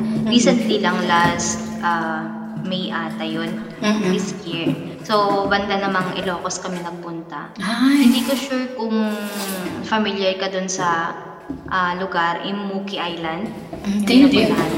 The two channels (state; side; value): identical; both; correlation 1.00